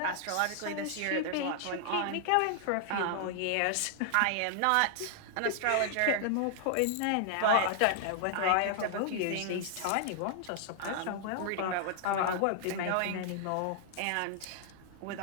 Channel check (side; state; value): both; different; correlation 0.00